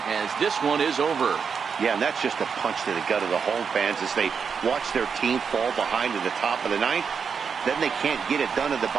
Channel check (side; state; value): left; quieter; 6.2 dB